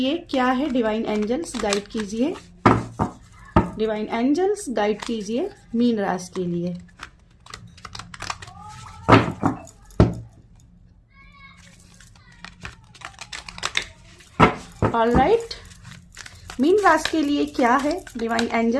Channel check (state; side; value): identical; both; correlation 1.00